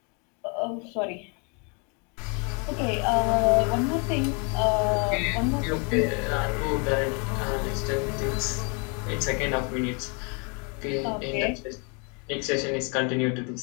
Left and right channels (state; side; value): quieter; right; 34.9 dB